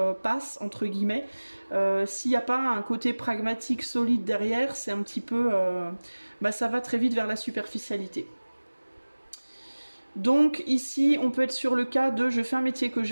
passe, entre guillemets, s'il n'y a pas un côté pragmatique solide derrière, c'est un petit peu... ça va très vite vers la superficialité. Donc ici, on peut être sur le cas de je fais un métier que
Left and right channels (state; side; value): inverted; both; correlation -1.00